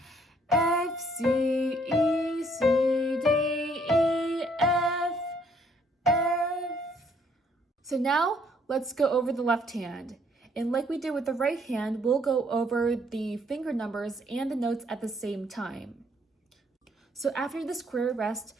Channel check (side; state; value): both; normal; correlation 0.66